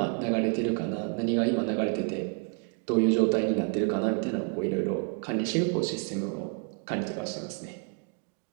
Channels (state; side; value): quieter; left; 37.8 dB